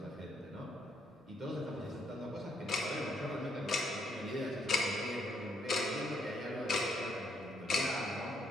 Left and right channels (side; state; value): both; normal; correlation 0.73